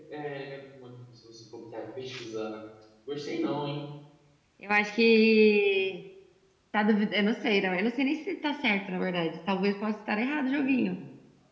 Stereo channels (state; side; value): identical; both; correlation 1.00